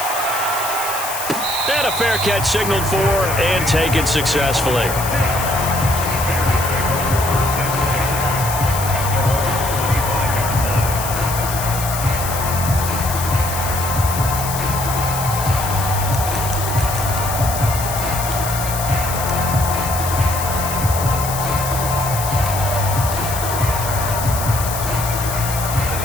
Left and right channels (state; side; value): noise; left; hiss, 6 dB below the sound